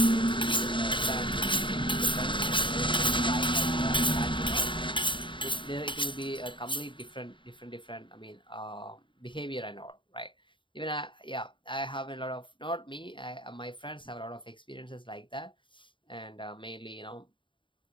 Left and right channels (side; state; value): right; late; 0.24 ms